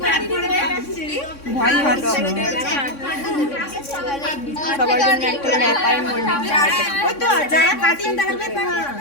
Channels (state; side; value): late; right; 3.6 ms